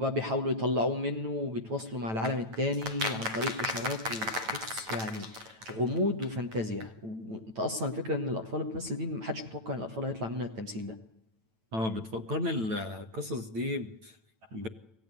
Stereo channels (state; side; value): late; left; 9.1 ms